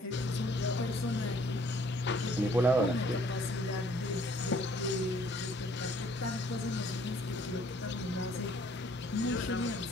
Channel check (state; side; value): normal; both; correlation 0.60